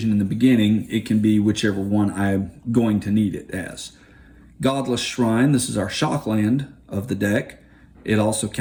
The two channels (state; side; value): identical; both; correlation 1.00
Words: in the beginning, it can be whichever one I'm going to need it as. Godless Shrine, this is our shock land of the deck. It also